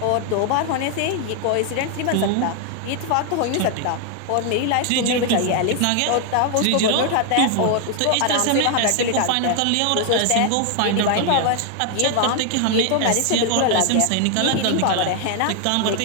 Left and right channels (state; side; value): different; both; correlation 0.00